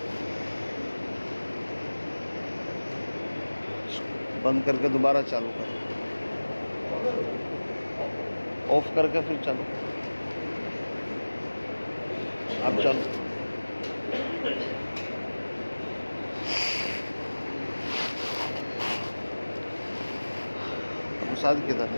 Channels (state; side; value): inverted; both; correlation -1.00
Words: بند کر کے دوبارہ چالو کر، آف کر کے پھر چالو، اب چالو۔ ساتھ کدھر